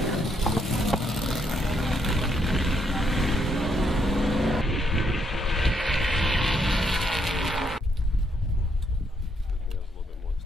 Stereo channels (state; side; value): normal; both; correlation 0.74